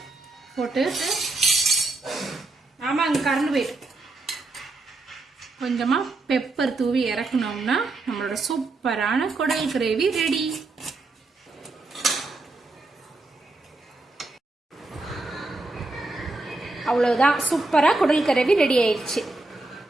போட்டு, ஆமாங்க கரண்ட் போயிட்டு, கொஞ்சமா பெப்பர் தூவி இறக்கணும்னா நம்மளோட சூப்பரான குடல் கிரேவி ரெடி. அவ்வளவுதான், சூப்பரா குடல் கிரேவி ரெடி ஆயிடுச்சு.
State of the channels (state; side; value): quieter; left; 3.2 dB